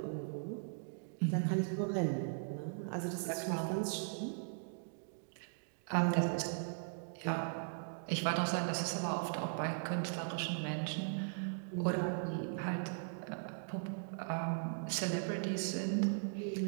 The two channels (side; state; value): left; silent; digital silence